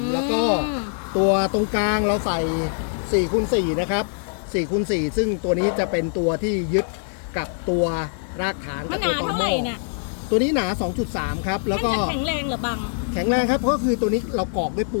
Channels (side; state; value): right; silent; digital silence